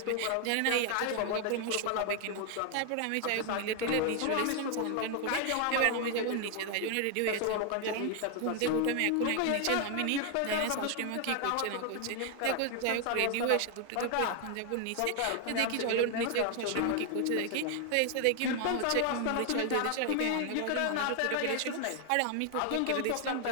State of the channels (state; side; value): different; both; correlation 0.00